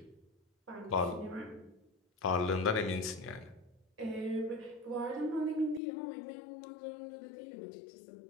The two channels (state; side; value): drops out; right; at 5.8 s